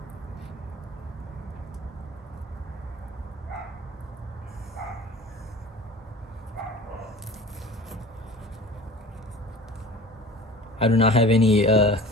I do not have anything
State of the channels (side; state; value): both; normal; correlation 0.41